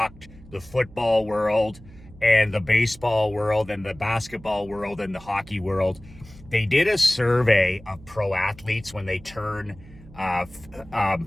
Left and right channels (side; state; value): right; noise; hum, 21 dB below the sound